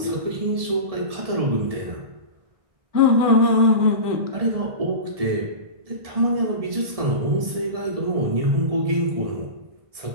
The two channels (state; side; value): late; left; 1.7 ms